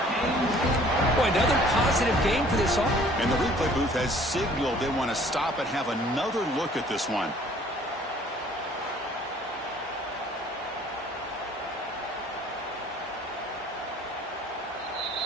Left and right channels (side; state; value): both; normal; correlation 0.55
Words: Boy, another positive game for this offense. And the replay booth has signaled they want to stop and have another look at this one.